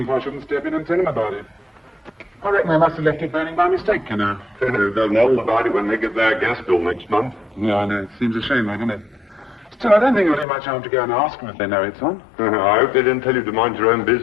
if I shouldn't step in and tell him about it. I reckon they must have left it burning by mistake, you know. They'll know about it when they get their gas bill next month. Yeah, I know. It seems a shame, doesn't it? Still, I don't think it'll do much harm to go and ask them if they know it's on. I hope they didn't tell you to mind your own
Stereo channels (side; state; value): right; drops out; at 10.5 s